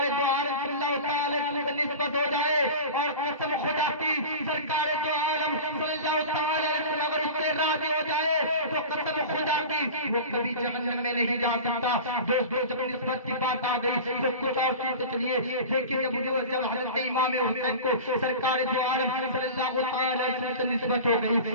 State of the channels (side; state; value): both; inverted; correlation -0.33